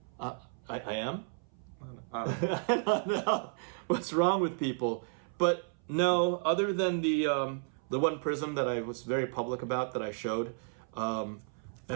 I am. I don't know. I don't know what's wrong with people, but no. Other than the one prism that I was very public about that I showed, and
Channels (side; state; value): left; silent; 56 dB below the other